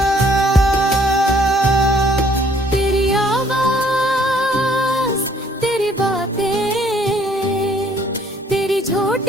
तेरी आवाज़, तेरी बातें, तेरी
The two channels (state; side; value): normal; both; correlation 0.62